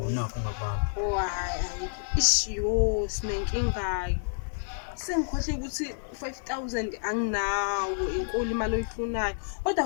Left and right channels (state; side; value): silent; right; digital silence